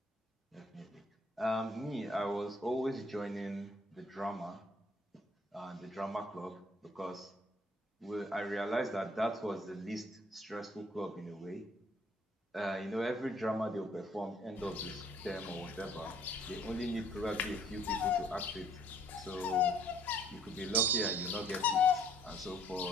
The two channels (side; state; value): both; normal; correlation 0.61